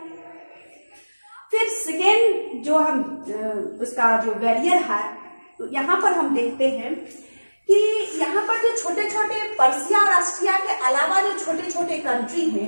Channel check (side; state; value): both; inverted; correlation -1.00